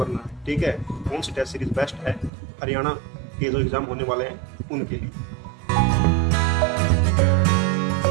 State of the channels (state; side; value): drops out; left; at 2.3 s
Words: है, ठीक है। कौन सी टेस्ट सीरीज बेस्ट है हरियाणा के जो एग्जाम होने वाले हैं उनके लिए।